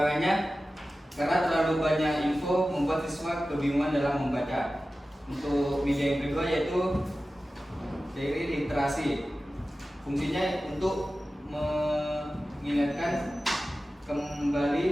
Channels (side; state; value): both; normal; correlation 0.95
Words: karena terlalu banyak info membuat siswa kebingungan dalam membaca. Untuk media yang kedua yaitu diary literasi. Fungsinya untuk mengingatkan